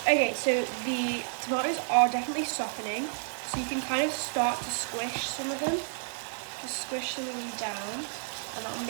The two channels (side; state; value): left; silent; digital silence